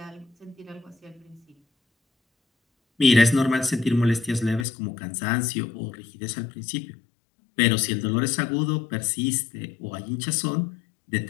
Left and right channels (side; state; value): right; drops out; at 4.7 s